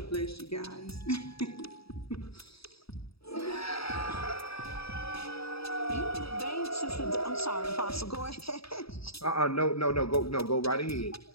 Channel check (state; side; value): late; right; 0.77 ms